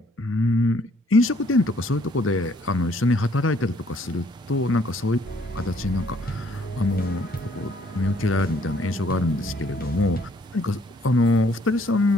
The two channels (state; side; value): normal; both; correlation 0.64